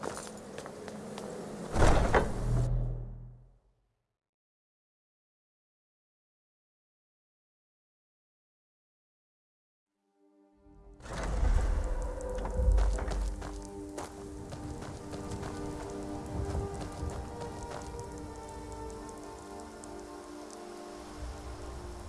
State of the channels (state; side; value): identical; both; correlation 1.00